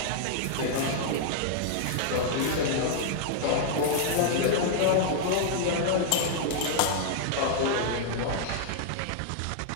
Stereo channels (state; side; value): different; both; correlation -0.01